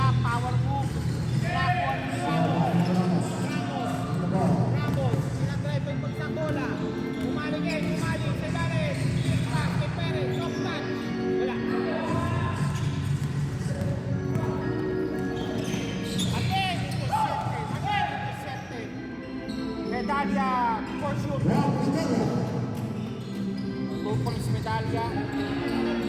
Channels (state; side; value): identical; both; correlation 1.00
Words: power move. Rapon, Ramos. Sinadrive yung pagsang bola. Umali. Sa Dares. Pass kay Perez. Soft touch. Wala. Again, intercepted. Medalya for sure. 2 points medalya.